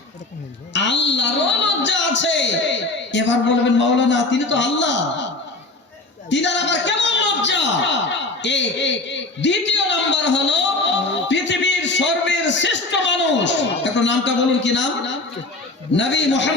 আল্লাহরও লজ্জা আছে। এবার বলবেন মাওলানা তিনি তো আল্লাহ, তিনার আবার কেমন লজ্জা? দ্বিতীয় নাম্বার হলো পৃথিবীর সর্বের শ্রেষ্ঠ মানুষ, একটু নামটা বলুন, কি নাম? নবী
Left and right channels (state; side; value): quieter; right; 3.0 dB